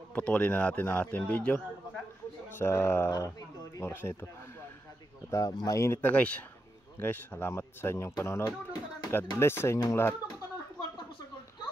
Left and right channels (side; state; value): both; normal; correlation 0.86